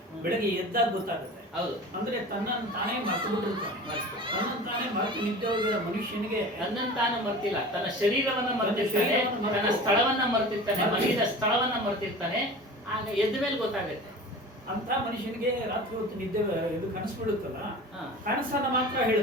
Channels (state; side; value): normal; both; correlation 0.37